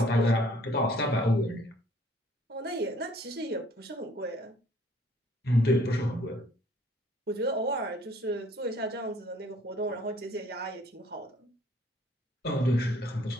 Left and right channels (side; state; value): both; normal; correlation 0.59